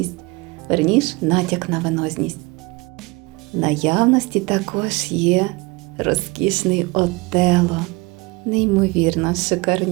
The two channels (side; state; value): left; quieter; 24.8 dB